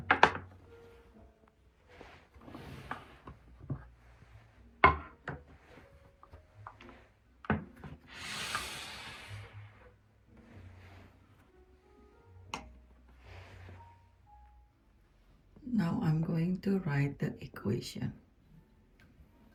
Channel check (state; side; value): identical; both; correlation 1.00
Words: Now I'm going to write the equation.